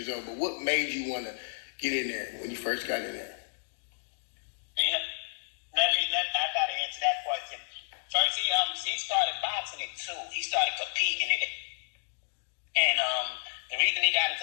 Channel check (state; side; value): silent; right; digital silence